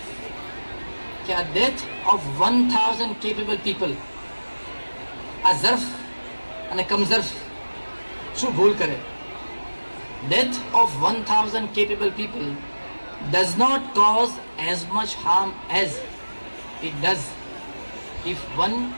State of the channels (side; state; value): both; inverted; correlation -1.00